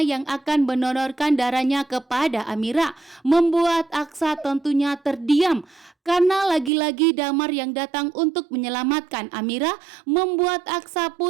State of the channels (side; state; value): left; drops out; at 6.7 s